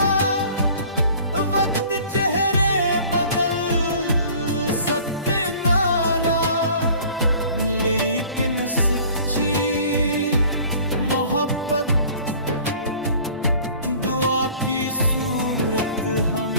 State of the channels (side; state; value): both; inverted; correlation -0.49